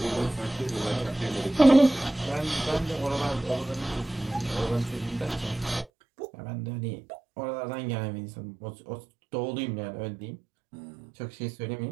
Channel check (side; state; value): left; drops out; at 5.9 s